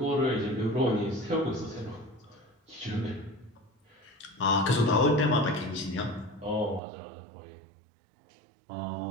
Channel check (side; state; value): left; drops out; at 6.8 s